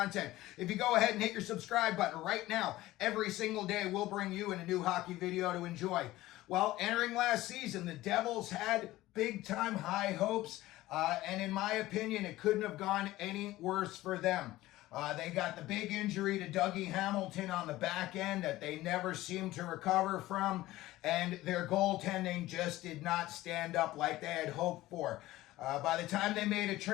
If you go ahead and hit your subscribe button right now, every single day we'll bring you in a new hockey video to enjoy. Well, entering last season, the Devils had big-time high hopes, and in my opinion, it couldn't have gone any worse for them. They got the big injury to Dougie Hamilton on the back end that they never seemed to recover from, and their goaltending just did not stand up like they had hoped for. By the time they made a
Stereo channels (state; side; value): quieter; right; 16.8 dB